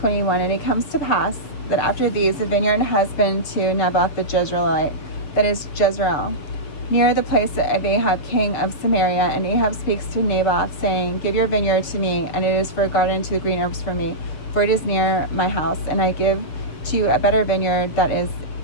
And it comes to pass that after these, a vineyard has been to Naboth the Jezreelite, that is Jezreel, near the place of Ahab king of Samaria. And Ahab speaks to Naboth, saying, Give your vineyard to me, and it is for a garden to the green herbs for me, for it is near my house, and I give to you a better vineyard that is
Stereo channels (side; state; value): right; late; 6.9 ms